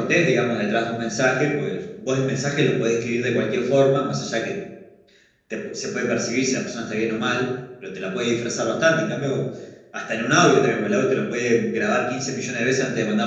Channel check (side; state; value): both; identical; correlation 1.00